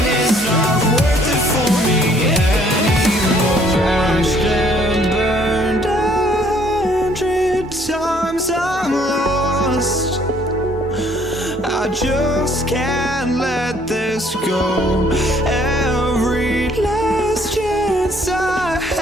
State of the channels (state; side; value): normal; both; correlation 0.62